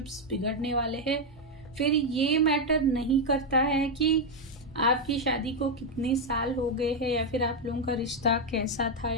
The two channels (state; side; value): normal; both; correlation 0.02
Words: बिगड़ने वाले हैं। फिर ये मैटर नहीं करता है कि आपकी शादी को कितने साल हो गए हैं या फिर आप लोगों का रिश्ता कैसा था